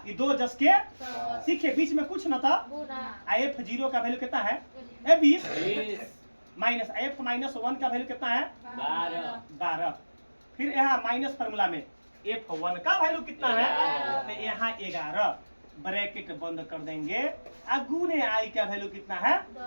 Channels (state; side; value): inverted; both; correlation -1.00